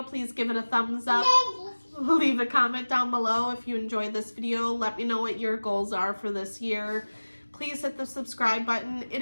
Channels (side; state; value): both; inverted; correlation -1.00